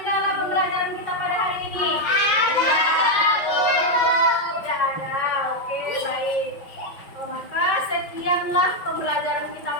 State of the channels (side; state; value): right; late; 5.6 ms